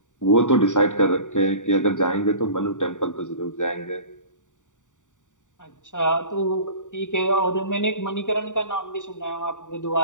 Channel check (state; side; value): late; right; 0.86 ms